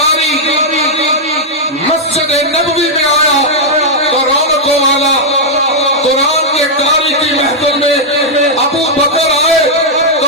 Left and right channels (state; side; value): normal; both; correlation -0.04